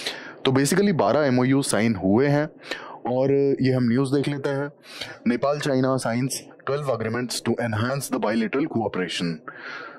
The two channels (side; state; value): both; identical; correlation 1.00